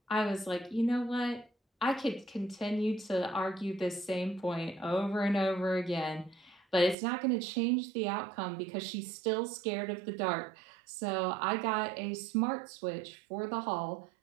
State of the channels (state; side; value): drops out; left; at 7.0 s